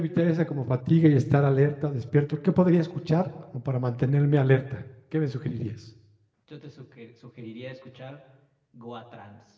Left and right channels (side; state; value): both; identical; correlation 1.00